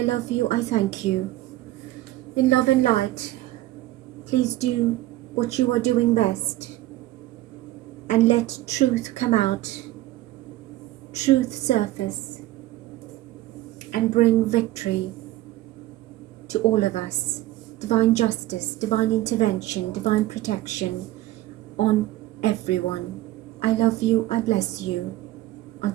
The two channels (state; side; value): quieter; left; 16.0 dB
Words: love you, I thank you. In love and light, please do what you are doing best. And let truth come out, truth surface, and bring victory to all of us. Divine justice, divine intervention, divine protection on everyone. I love you, I bless you.